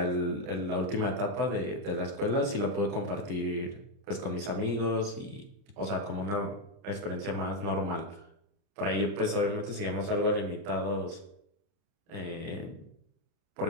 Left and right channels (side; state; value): left; late; 30 ms